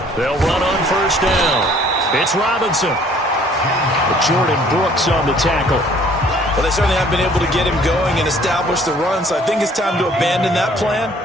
They'll run on 1st down. It's Robinson. Jordan Brooks on the tackle. Well, they certainly have been able to get him going and establish the run, so I think it's time to abandon that plan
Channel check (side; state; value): both; normal; correlation 0.57